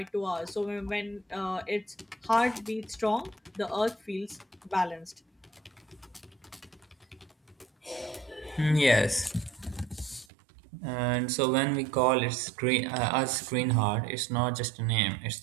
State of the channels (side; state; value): left; drops out; at 10.2 s